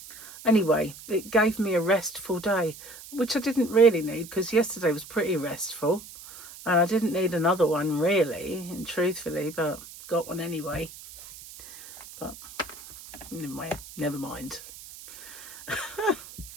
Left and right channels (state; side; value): noise; right; hiss, 16 dB below the sound